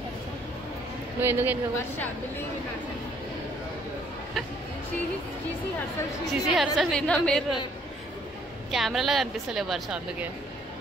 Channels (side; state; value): both; normal; correlation 0.63